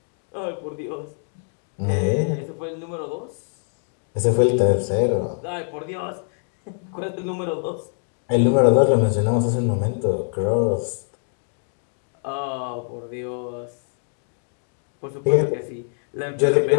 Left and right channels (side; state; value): right; silent; 55 dB below the other